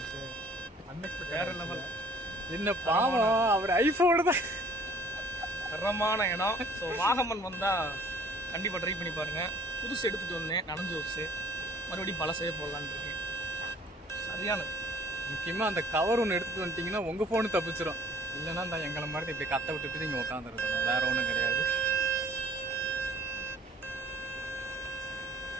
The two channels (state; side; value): normal; both; correlation 0.53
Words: அன்எக்ஸ்பெக்டட் வேற லெவல். என்ன பாவம், அவர் ஐஃபோனு தான். தரமான இடம். ஸோ வாகமன் வந்தால் கண்டிப்பாக ட்ரை பண்ணி பாருங்கள். புதுசு எடுத்துகிட்டு வந்தேன், நனைஞ்சு வச்சு மறுபடியும் பழசே போடலான்னு இருக்கேன். சரியானது. முக்கியமாக அந்த கவர் ஒன்று எடுத்துகிட்டு வந்துட்டிங்கன்னா உங்கள் ஃபோனு தப்பிச்சிடும். இல்லைன்னா இந்த எங்களை மாதிரி இப்படி கத்த விட்டுட்டு நீங்கள் உட்காந்துருக்கணும். வேறு ஒன்றும் கிடையாது.